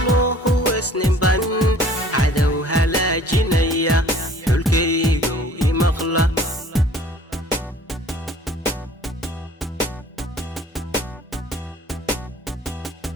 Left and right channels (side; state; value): both; normal; correlation 0.52